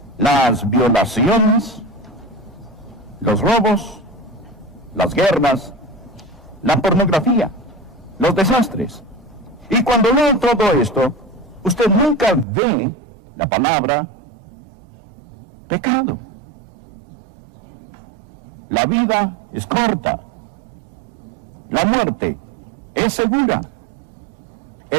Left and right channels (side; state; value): left; drops out; at 12.5 s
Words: las violaciones, los robos, las guerras, la pornografía, los desastres. Y cuando lee todo esto, usted nunca ve la palabra pecado. La vida es corta. La muerte es segura.